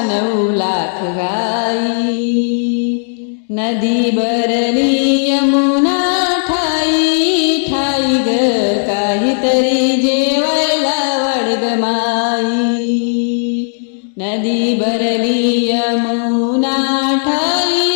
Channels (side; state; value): right; silent; digital silence